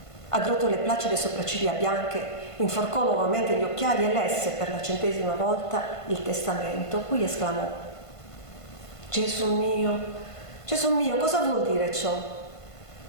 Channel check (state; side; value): late; right; 1.5 ms